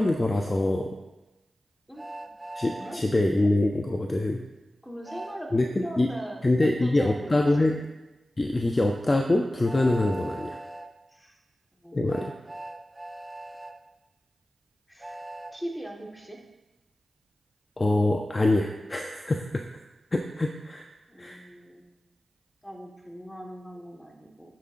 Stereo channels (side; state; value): both; normal; correlation 0.96